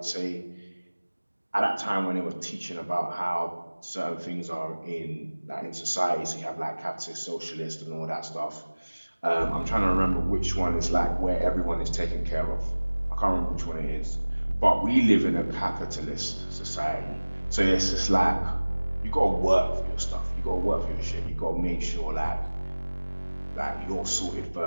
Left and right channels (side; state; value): both; inverted; correlation -1.00